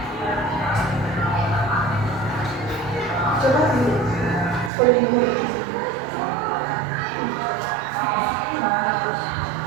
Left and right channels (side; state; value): left; drops out; at 4.7 s